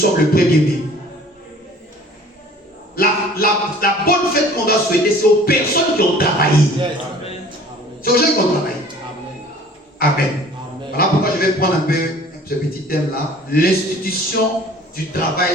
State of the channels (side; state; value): both; normal; correlation 0.49